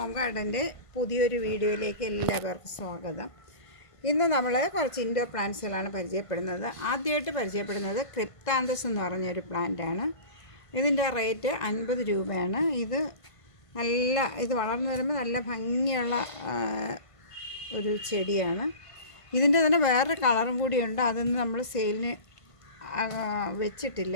ഗാർഡൻ്റെ പുതിയൊരു വീഡിയോയിലേക്ക് എല്ലാവർക്കും സ്വാഗതം. ഇന്ന് നമ്മൾ കുറച്ച് ഇൻഡോർ പ്ലാന്റ്സുകളാണ് പരിചയപ്പെടുന്നത്. ആദ്യമായിട്ട് പരിചയപ്പെടുന്നത് ക്രിപ്താന്തസ് എന്ന് പറഞ്ഞൊരു പ്ലാന്റാണ്. ഇതിൻ്റെ റേറ്റ് 50 രൂപയാണ്. ഇത് വളർന്നു വരുമ്പോൾ നല്ല ഭംഗിയുള്ള ഒരു ചെടിയാണ്. ഇതിൻ്റെ തന്നെ വേറൊരു കളറും കൂടിയുണ്ട്, അതൊന്നും നമ്മൾ സെയിലിന്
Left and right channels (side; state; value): right; late; 1.5 ms